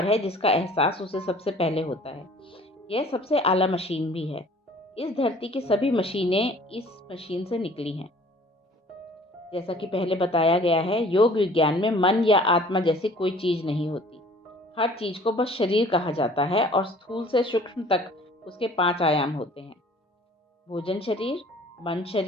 है जिसका एहसास उसे सबसे पहले होता है। यह सबसे आला मशीन भी है। इस धरती की सभी मशीनें इस मशीन से निकली हैं। जैसा कि पहले बताया गया है, योग विज्ञान में मन या आत्मा जैसी कोई चीज नहीं होती। हर चीज को बस शरीर कहा जाता है और स्थूल से सूक्ष्म तक उसके 5 आयाम होते हैं: भोजन शरीर, मन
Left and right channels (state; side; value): normal; both; correlation 0.51